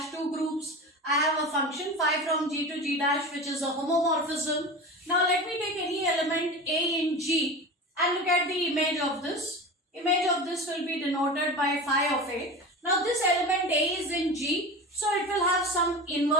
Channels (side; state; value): both; normal; correlation 0.29